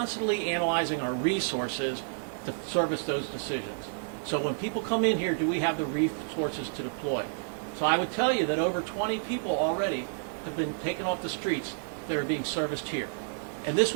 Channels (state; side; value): silent; left; digital silence